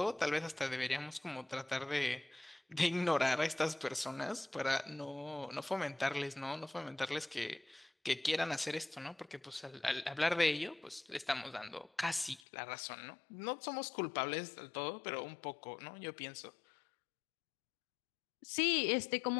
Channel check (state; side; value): drops out; right; at 12.4 s